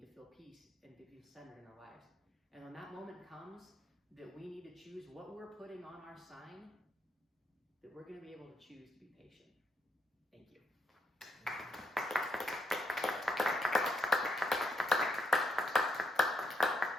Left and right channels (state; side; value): normal; both; correlation 0.78